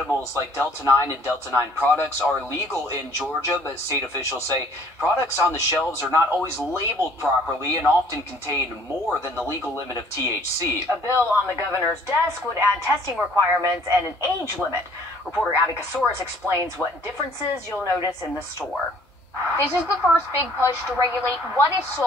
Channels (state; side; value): normal; both; correlation 0.57